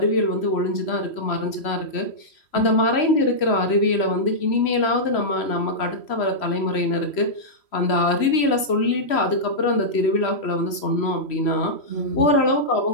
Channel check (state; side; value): late; right; 3.1 ms